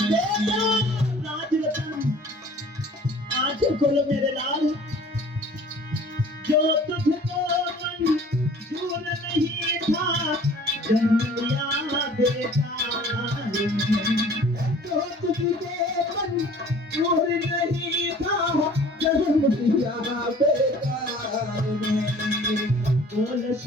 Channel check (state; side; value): normal; both; correlation 0.49